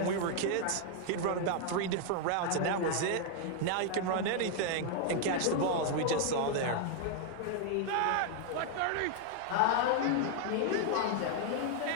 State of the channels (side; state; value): both; different; correlation 0.00